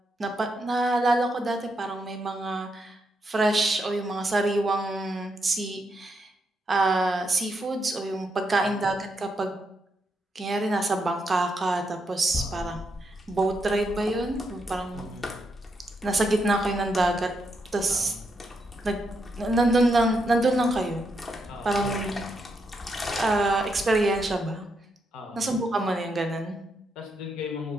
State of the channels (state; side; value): normal; both; correlation 0.81